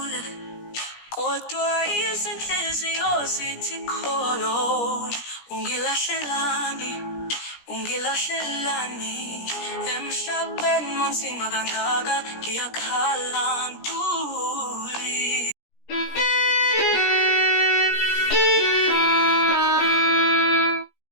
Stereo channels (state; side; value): late; right; 17 ms